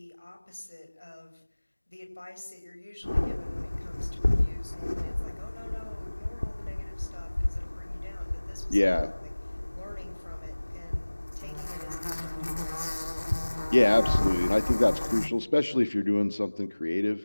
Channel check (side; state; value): both; inverted; correlation -1.00